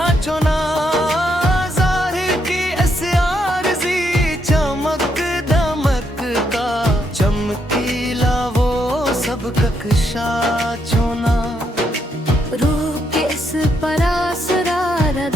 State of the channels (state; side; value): normal; both; correlation 0.77